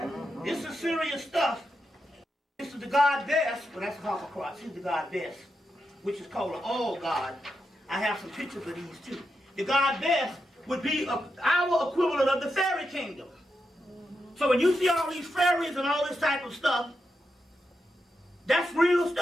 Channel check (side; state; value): both; normal; correlation 0.86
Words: This is serious stuff. This is the god Bess. Well, that's a Harpocross. Here's the god Bess, which is called an all god. I have some pictures of these too. The god Bess would be our equivalent of the fairy kingdom. So when you see all these fairies and all this type of stuff, that's real